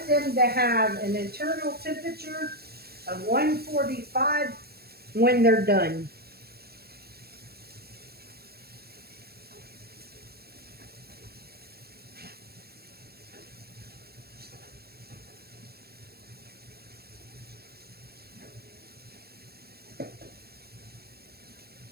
them to have an internal temperature of 145 when they're done.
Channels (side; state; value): left; late; 0.46 ms